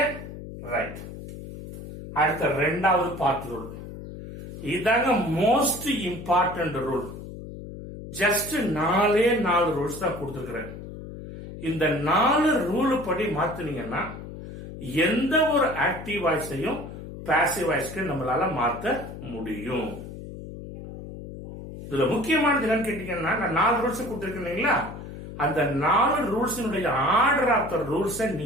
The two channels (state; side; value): noise; left; hum, 11 dB below the sound